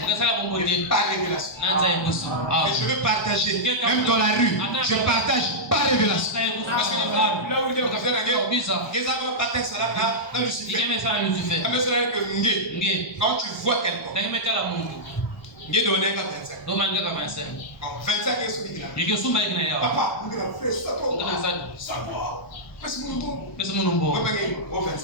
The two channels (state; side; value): late; right; 1.0 ms